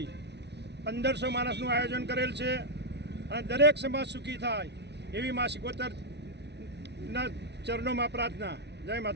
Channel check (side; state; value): left; late; 0.50 ms